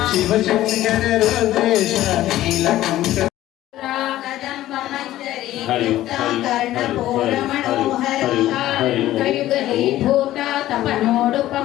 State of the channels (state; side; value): quieter; right; 14.4 dB